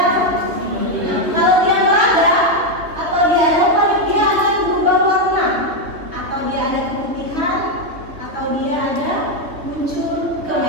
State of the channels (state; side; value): late; left; 3.0 ms